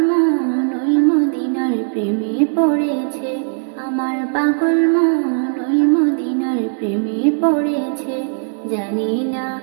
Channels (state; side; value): silent; left; digital silence